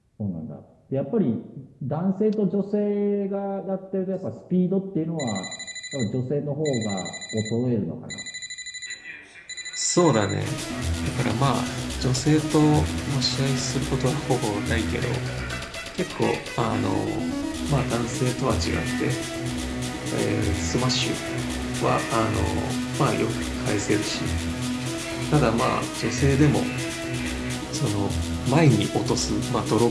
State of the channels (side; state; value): both; identical; correlation 1.00